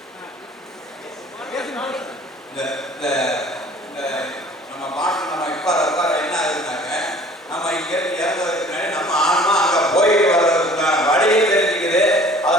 இந்த இந்த இந்த நம்ம மாட்டு நம்ம இப்போ என்ன ஆகுதுனாக்க நம்ம இங்கே இறங்குறதுக்கு முன்னாடி நம்ம ஆன்மா அங்கே போயிட்டு வர்றதுக்கான வழியை தெரிஞ்சுக்குது.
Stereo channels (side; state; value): both; normal; correlation 0.50